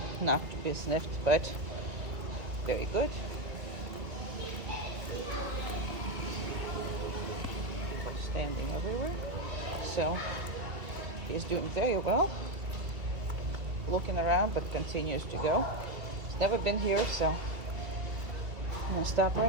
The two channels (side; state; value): left; late; 2.2 ms